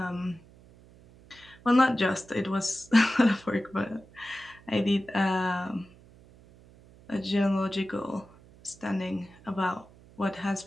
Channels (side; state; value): right; noise; hum, 24 dB below the sound